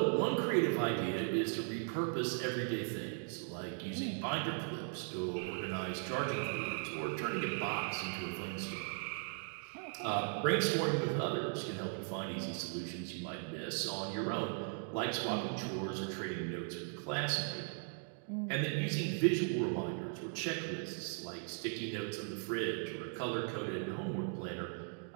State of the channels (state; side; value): silent; left; 52 dB below the other